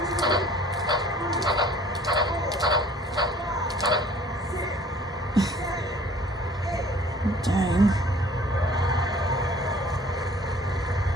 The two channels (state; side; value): normal; both; correlation 0.52